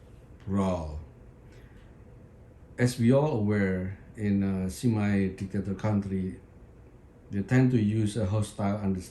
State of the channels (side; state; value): both; identical; correlation 1.00